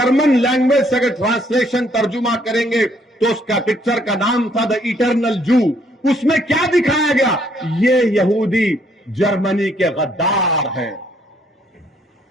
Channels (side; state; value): both; normal; correlation 0.67